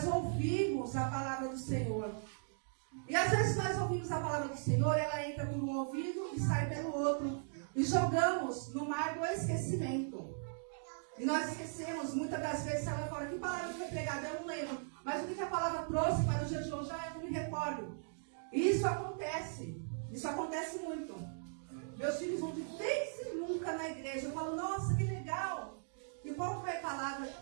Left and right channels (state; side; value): silent; left; digital silence